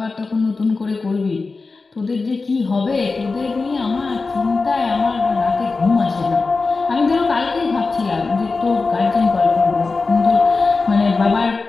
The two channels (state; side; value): quieter; right; 4.0 dB